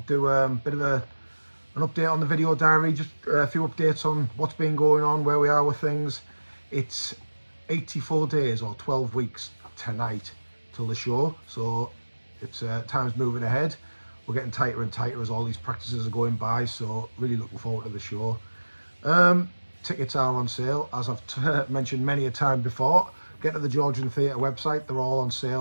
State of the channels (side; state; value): both; inverted; correlation -1.00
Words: do a bit of an update on the video diary, just a few updates on what's been going on, where we are with things. It's 84 days or 12 weeks tonight till the show, so it's time's moving ahead. We're getting tighter and tighter as all these practices are going by, so really looking forward to the show. Tickets are on sale, as I've mentioned many a time before. Get to the Georgian Theatre website, they're all on